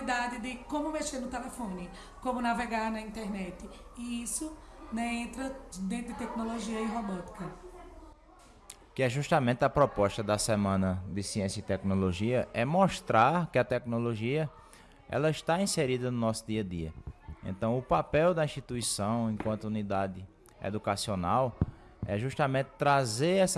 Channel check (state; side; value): identical; both; correlation 1.00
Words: de como mexer no telefone, como navegar na internet. E isso, né, entra dentro de tecnologia e robótica. Que é justamente a proposta da Semana de Ciência e Tecnologia, é mostrar que a tecnologia ela está inserida no nosso dia a dia. Então o papel da instituição enquanto unidade educacional é justamente trazer